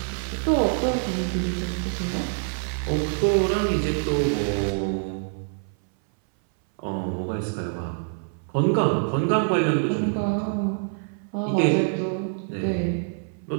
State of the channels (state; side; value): silent; left; 60 dB below the other